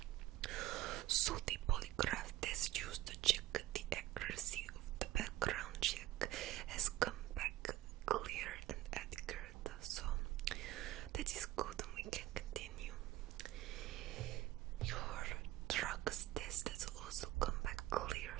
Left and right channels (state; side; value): quieter; left; 15.3 dB